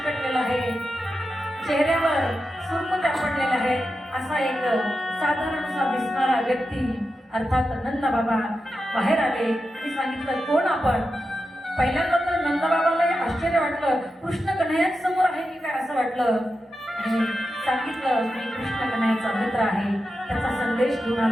आहे, चेहऱ्यावर सुरकुत्या पडलेल्या आहेत. असा एक साधारणसा दिसणारा व्यक्ती अर्थात नंदबाबा बाहेर आले. मी सांगितलं, कोण आपण? पहिल्यांदा तर नंदबाबालाही आश्चर्य वाटलं, कृष्ण कन्हैयाच समोर आहे की काय असं वाटलं. आणि सांगितलं, मी कृष्ण कन्हैयाचा मित्र आहे, त्याचा संदेश घेऊन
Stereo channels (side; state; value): both; normal; correlation 0.90